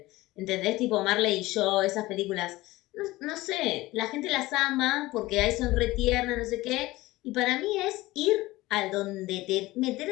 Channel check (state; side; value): quieter; right; 18.8 dB